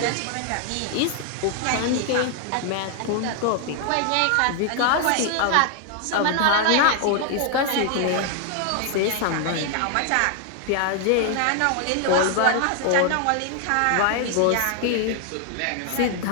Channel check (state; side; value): different; both; correlation 0.00